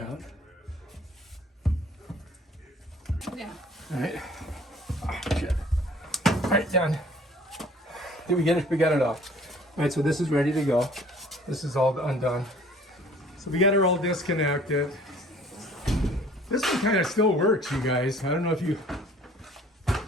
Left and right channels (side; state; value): both; normal; correlation 0.53